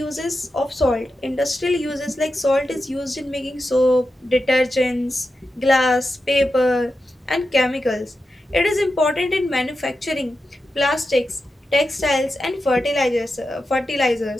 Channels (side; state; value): both; normal; correlation 0.90